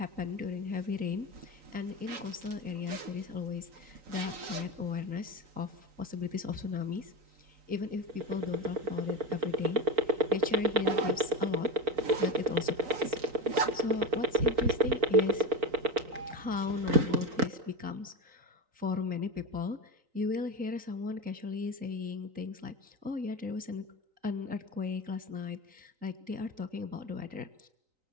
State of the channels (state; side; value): late; left; 3.9 ms